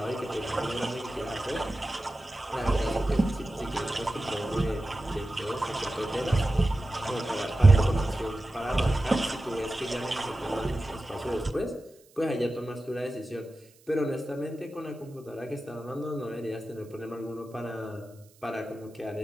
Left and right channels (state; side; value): noise; right; hiss, 29 dB below the sound